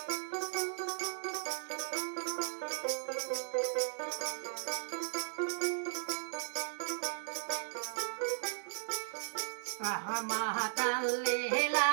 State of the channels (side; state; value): left; silent; digital silence